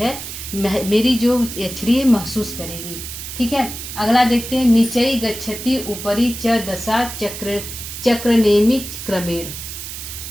मेरी जो यक्षिणी महसूस करेगी। ठीक है, अगला देखते हैं। नीचई गच्छति ऊपरी च दशा चक्रनेमि क्रमेण।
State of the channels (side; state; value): right; noise; hiss, 9 dB below the sound